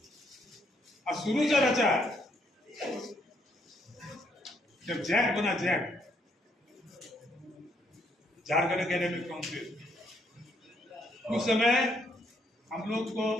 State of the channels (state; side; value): normal; both; correlation 0.72